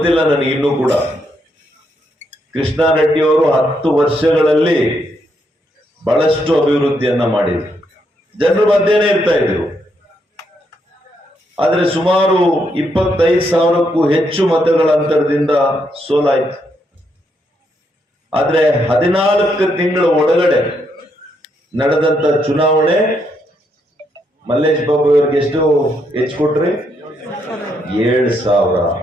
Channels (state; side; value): normal; both; correlation 0.77